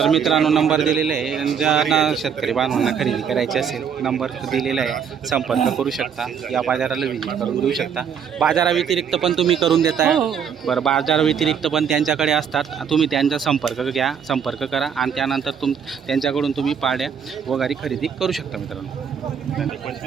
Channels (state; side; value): quieter; left; 7.4 dB